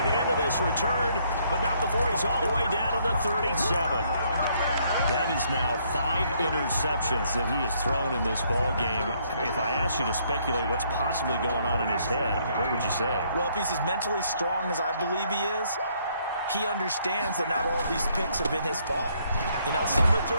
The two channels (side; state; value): both; inverted; correlation -0.69